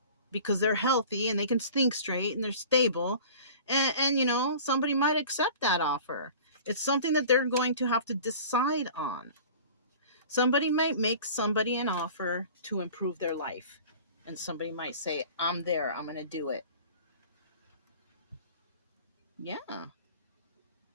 because they're healthy and they can think straight and they're stable. And you know, somebody might accept that offer. It's something that they're going to have to decide on. Somebody might make somebody an offer to improve their life. And somebody might say, I'm there, I'm going to do it. Yeah.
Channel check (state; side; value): inverted; both; correlation -0.42